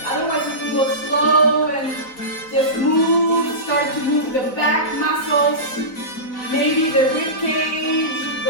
Otherwise, you can go slow and just move. Start to move the back muscles. Maybe the rib cage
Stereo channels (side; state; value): right; late; 3.9 ms